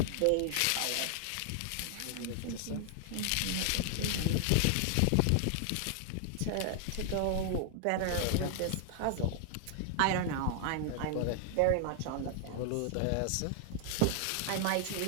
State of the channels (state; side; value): different; both; correlation 0.00